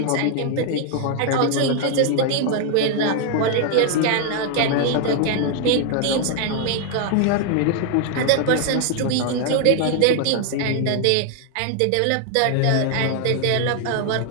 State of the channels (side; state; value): both; different; correlation 0.00